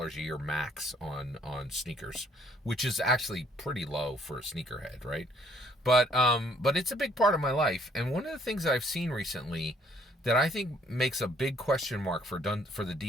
a year max on sneakers, which is actually pretty low for a sneakerhead, right? But it's a big part of my life. And one of the things that I've seen recently that I think makes a big question mark for the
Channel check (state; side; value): normal; both; correlation 0.63